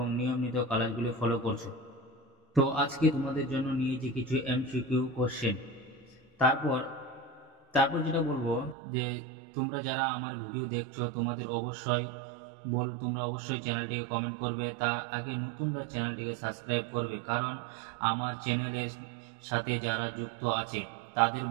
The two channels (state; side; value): drops out; left; at 8.8 s